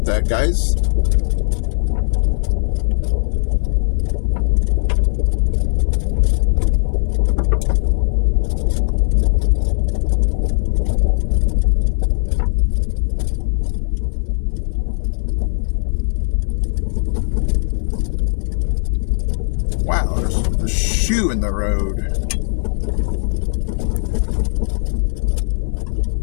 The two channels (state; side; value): silent; right; 62 dB below the other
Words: that, guys. Wow, there's a shoe in the road.